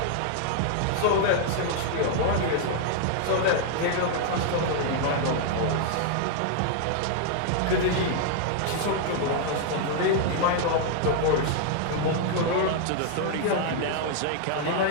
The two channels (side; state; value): both; different; correlation 0.00